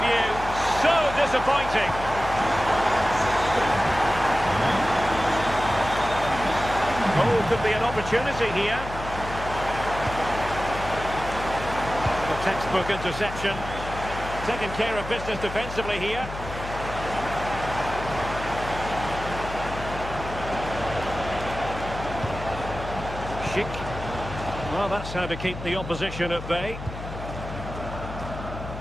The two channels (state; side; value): noise; left; hum, 10 dB below the sound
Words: view, so disappointing. Oh, could be an opportunity here. A textbook interception. Taking care of business defensively here. Schick. Well, that's how to keep the opposition at bay.